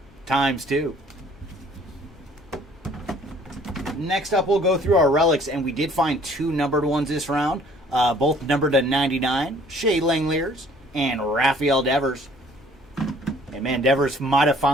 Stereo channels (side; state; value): both; normal; correlation 0.56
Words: ×2. Next up, we'll go through our relics, and we did find 2 numbered ones this round, both numbered to 99, Shea Langeliers and Rafael Devers. And man, Devers might have